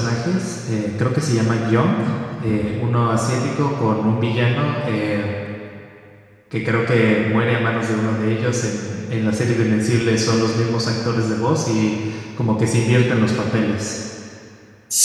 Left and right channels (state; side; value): identical; both; correlation 1.00